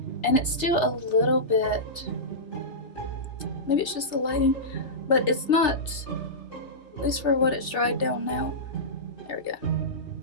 and it's still a little bit, maybe it's just the lighting, but it's not, at least for what it's dried down now. There we go.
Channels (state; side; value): late; right; 3.4 ms